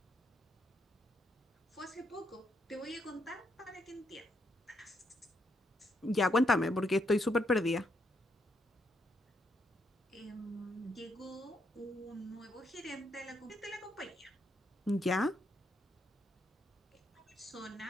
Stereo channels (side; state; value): both; normal; correlation 0.77